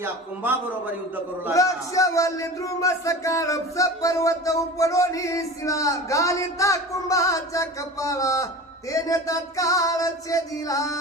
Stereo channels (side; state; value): both; normal; correlation 0.34